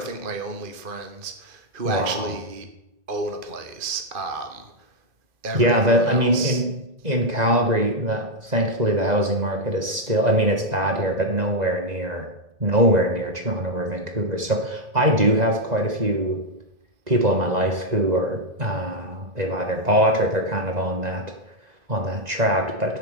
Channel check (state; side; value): late; left; 2.0 ms